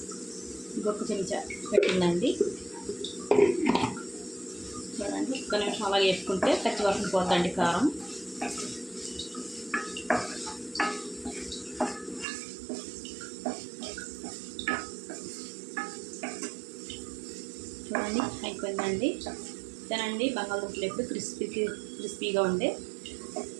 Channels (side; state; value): left; drops out; at 12.2 s